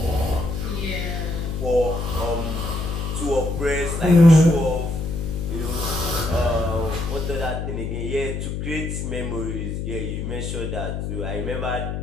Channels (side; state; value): left; noise; hum, 3 dB below the sound